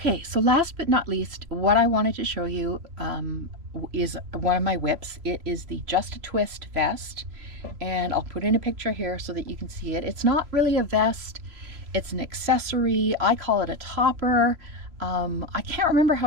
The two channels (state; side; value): late; left; 3.0 ms